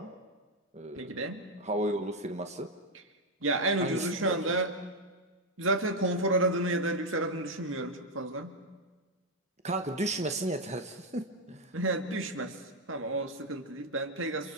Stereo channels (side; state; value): both; normal; correlation 0.03